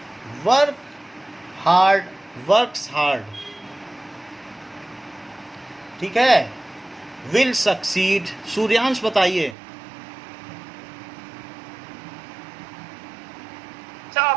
work hard, works hard, ठीक है। विल सक्सीड, सूर्यांश बताइए। So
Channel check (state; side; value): drops out; left; at 9.6 s